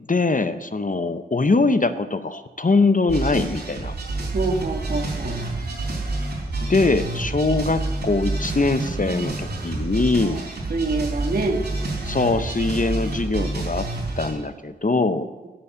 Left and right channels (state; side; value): normal; both; correlation 0.65